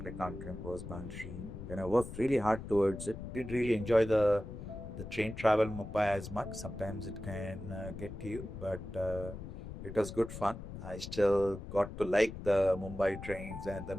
accountant was boundary. And I worked really hard towards it. Did really enjoy the train travel in Mumbai as much. Sometimes it can get to you, but it was good fun. I still got to like the Mumbai trains and the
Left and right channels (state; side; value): noise; left; rumble, 10 dB below the sound